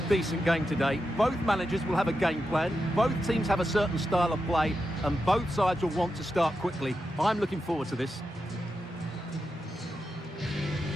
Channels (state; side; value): normal; both; correlation 0.88